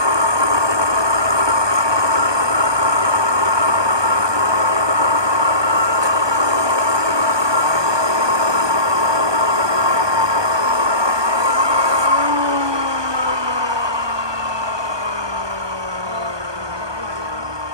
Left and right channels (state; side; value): late; left; 1.2 ms